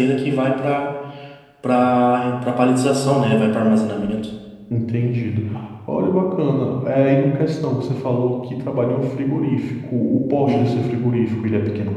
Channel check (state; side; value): identical; both; correlation 1.00